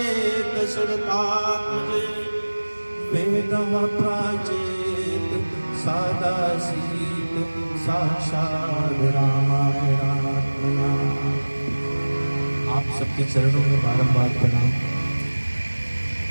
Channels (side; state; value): both; inverted; correlation -1.00